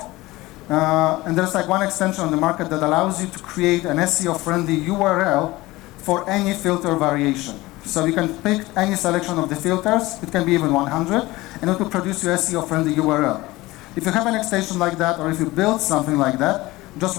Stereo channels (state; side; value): quieter; right; 19.6 dB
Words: And there's like one extension on the market that allows you to create an SEO-friendly URL for any filter variation. So you can pick any selection of the filters, it can be even 100, and it will produce your SEO-friendly URL. If you have an extension like that, or if you build something like that,